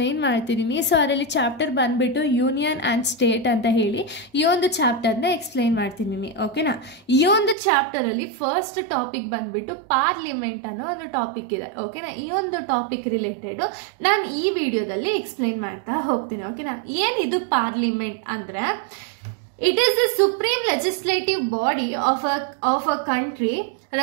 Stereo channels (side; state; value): left; drops out; at 7.6 s